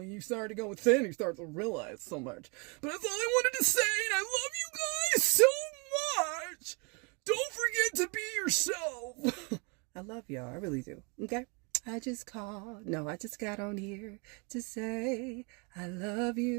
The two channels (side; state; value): left; quieter; 32.1 dB